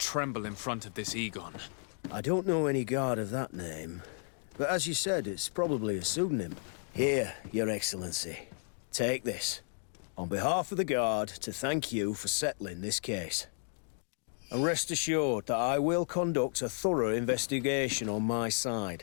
in front of this Egon. I don't know any guard of that name. But as you said, it's probably a pseudonym. Here, Your Excellency. Take this. On behalf of the Guard, to thank you for settling this case. And rest assured that I will conduct a thorough investigation on my side.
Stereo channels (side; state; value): right; silent; 56 dB below the other